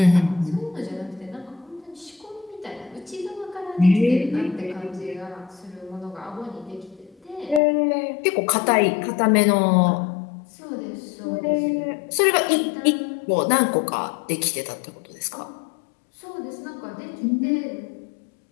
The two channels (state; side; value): drops out; right; at 7.6 s